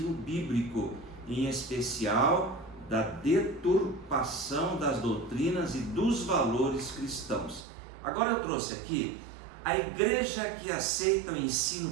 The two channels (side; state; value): left; drops out; at 7.7 s